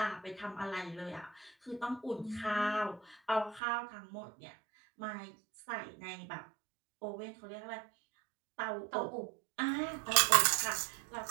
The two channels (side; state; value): left; drops out; at 3.6 s